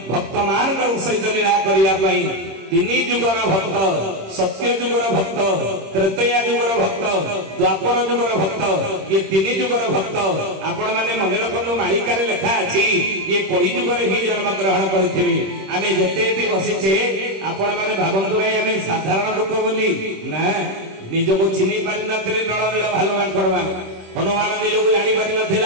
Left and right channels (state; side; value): late; left; 26 ms